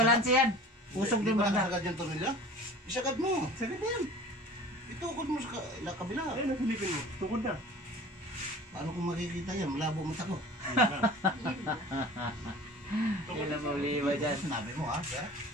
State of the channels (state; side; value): normal; both; correlation 0.42